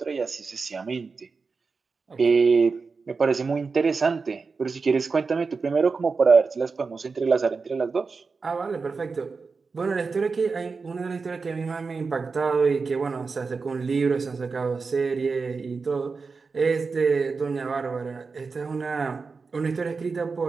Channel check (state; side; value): quieter; left; 4.6 dB